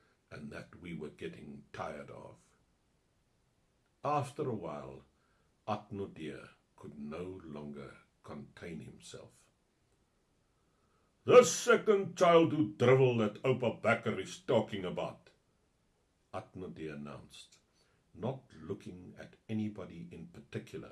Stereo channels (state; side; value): identical; both; correlation 1.00